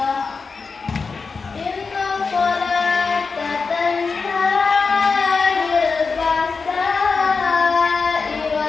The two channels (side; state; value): right; quieter; 4.7 dB